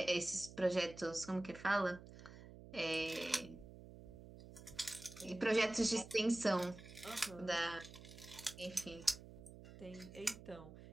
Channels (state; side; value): noise; right; hum, 16 dB below the sound